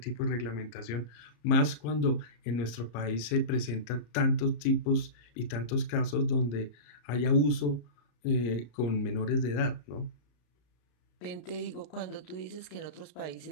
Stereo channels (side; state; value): right; late; 34 ms